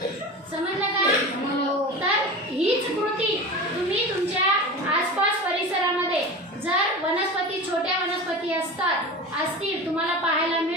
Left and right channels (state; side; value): normal; both; correlation 0.30